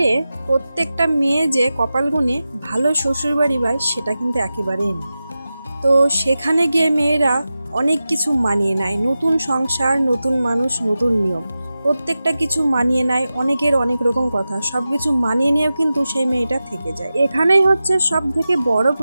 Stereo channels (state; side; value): inverted; both; correlation -0.93